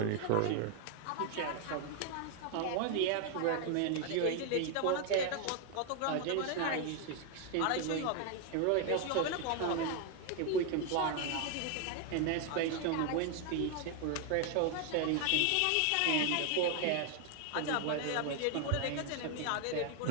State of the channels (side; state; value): both; different; correlation 0.01